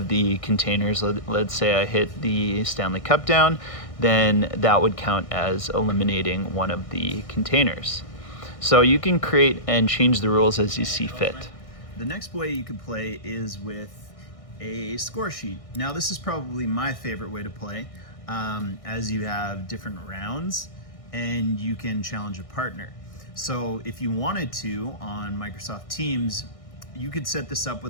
the containers, let's say I hit the Stanley Cup down, then that would count as eliminating one of the containers. So you can create and change the rules as you see fit. The next way you could play is with a score sheet. Now, this is probably my favorite way to play, as you have different rounds and you can challenge a partner. So if you wanted to, on Microsoft Teams, you could set this up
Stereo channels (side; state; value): right; late; 1.6 ms